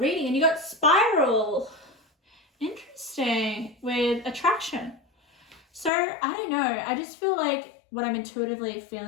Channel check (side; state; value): right; drops out; at 5.9 s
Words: And you got Spiral. Interesting. With attraction. So, I don't know. I just feel like what I'm intuitively